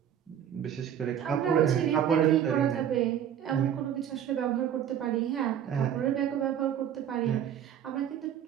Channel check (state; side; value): quieter; left; 9.6 dB